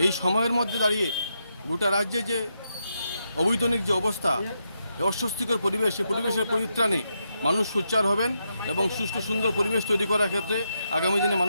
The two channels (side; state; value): both; inverted; correlation -0.83